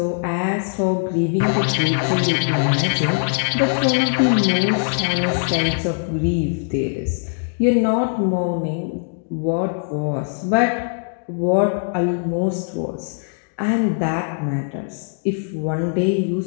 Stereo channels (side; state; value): right; silent; 62 dB below the other